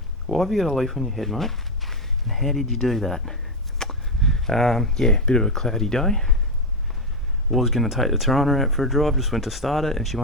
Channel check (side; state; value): both; normal; correlation 0.08